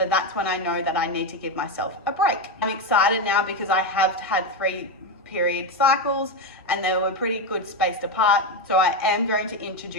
that's when I know that I need to give myself a break. I'm excited now because I have had 3 period cycles and they were pretty good spaced apart. So I am going to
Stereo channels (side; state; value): both; normal; correlation 0.11